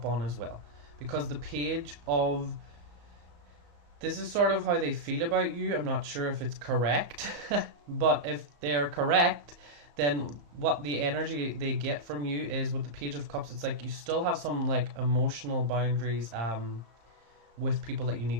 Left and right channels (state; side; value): late; left; 34 ms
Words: on as well. Because the page of... This is sort of how they feel about you. I'm not sure if it's correct, but if they're correct, then what the energy they get from you is with the Page of Cups, it's like you still have some like emotional boundaries with people that you